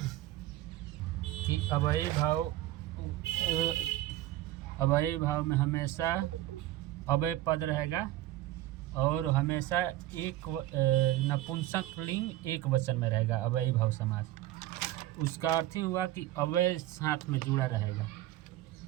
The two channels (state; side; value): quieter; left; 15.1 dB